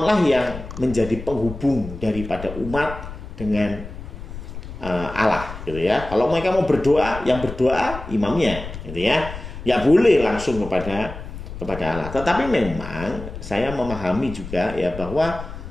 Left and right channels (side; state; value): left; noise; rumble, 11 dB below the sound